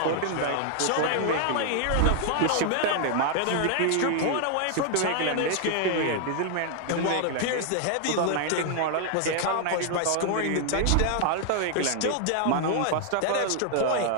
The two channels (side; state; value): both; different; correlation 0.00